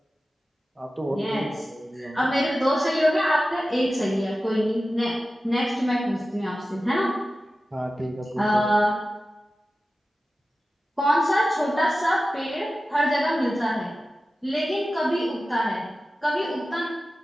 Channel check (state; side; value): normal; both; correlation 0.94